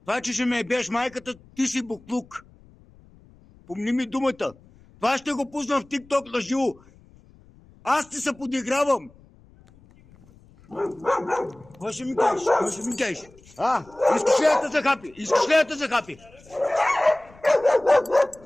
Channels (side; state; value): left; noise; rumble, 27 dB below the sound